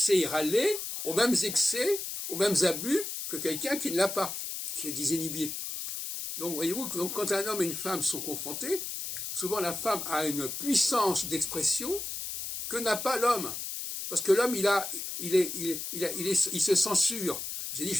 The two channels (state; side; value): noise; left; hiss, 5 dB below the sound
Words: aller aux mêmes excès, aux mêmes abus que quelqu'un qui ne l'a pas, qui est désinhibé. Donc, voyez-vous, quand un homme et une femme sont confrontés, souvent la femme a une puissance d'expression que n'a pas l'homme. Parce que l'homme, il se censure. J'ai dit, je